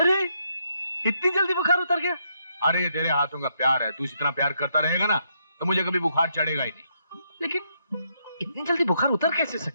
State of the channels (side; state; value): both; inverted; correlation -0.76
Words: गया? अरे ये तेरे हाथों का प्यार है, तू इतना प्यार करता रहेगा ना तो मुझे कभी बुखार चढ़ेगा ही नहीं। लेकिन इतनी जल्दी बुखार उतर कैसे